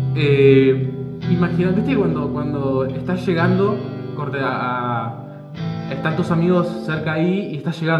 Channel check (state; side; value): identical; both; correlation 1.00